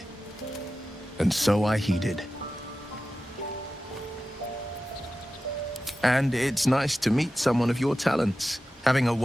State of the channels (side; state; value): both; normal; correlation 0.93